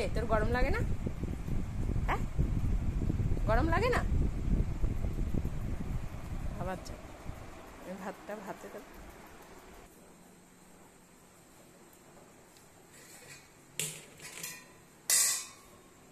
তোর গরম লাগে না? হ্যাঁ গরম লাগে না? আবার যা ভাতটা ভাতে দেব।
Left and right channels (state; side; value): identical; both; correlation 1.00